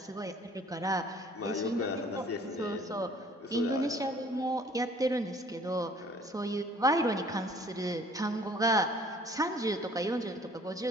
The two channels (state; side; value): normal; both; correlation 0.55